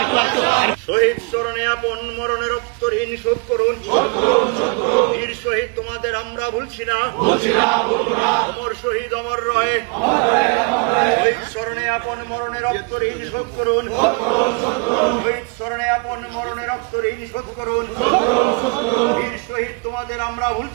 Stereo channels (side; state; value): left; quieter; 31.6 dB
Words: শহীদ স্মরণে আপন মরণে রক্ত ঋণ শোধ করুন। বীর শহীদ তোমাদের আমরা ভুলছি না। অমর শহীদ অমর রয়ে। শহীদ স্মরণে আপন মরণে রক্ত ঋণ শোধ করুন। শহীদ স্মরণে আপন মরণে রক্ত ঋণ শোধ করুন। বীর শহীদ তোমাদের আমরা